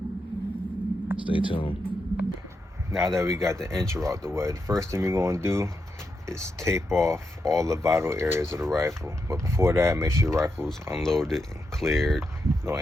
Stay tuned. Now that we got the intro out the way, the first thing we're going to do is tape off all the vital areas of the rifle. But before that, make sure your rifle's unloaded and cleared, no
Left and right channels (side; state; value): both; normal; correlation 0.85